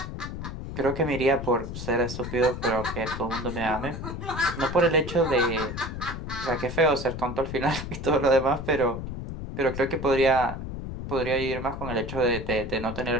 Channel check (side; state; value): left; noise; rumble, 7 dB below the sound